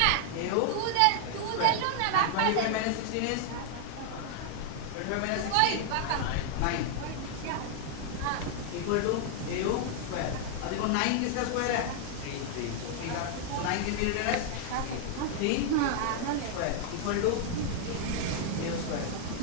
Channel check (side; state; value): both; different; correlation 0.00